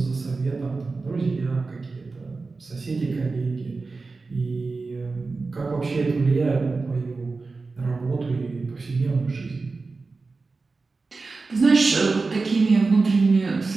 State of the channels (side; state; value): left; quieter; 4.0 dB